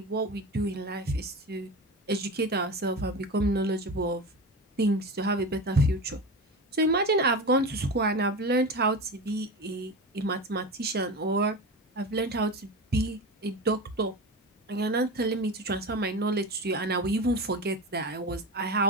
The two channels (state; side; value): normal; both; correlation 0.27